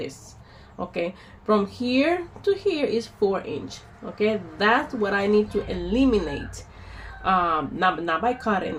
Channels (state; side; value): identical; both; correlation 1.00